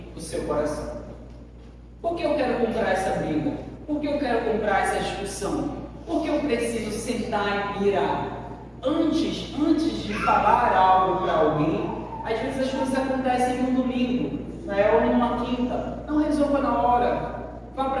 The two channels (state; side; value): identical; both; correlation 1.00